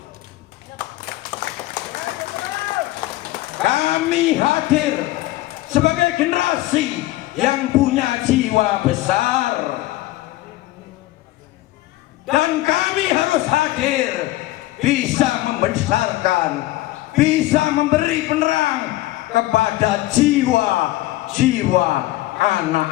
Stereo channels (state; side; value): quieter; right; 17.3 dB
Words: Kami hadir sebagai generasi yang punya jiwa besar, dan kami harus hadir bisa membesarkan, bisa memberi penerang kepada jiwa-jiwa